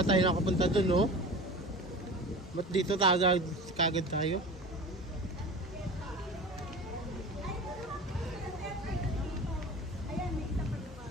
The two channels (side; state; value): both; normal; correlation 0.35